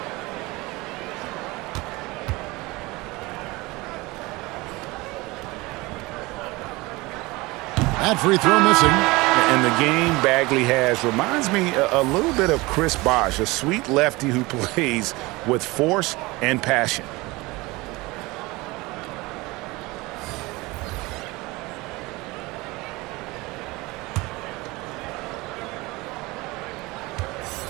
That free throw missing. And the game Bagley has reminds me a little bit of Chris Bosh, a sweet lefty who plays with force and passion.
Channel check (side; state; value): left; quieter; 22.4 dB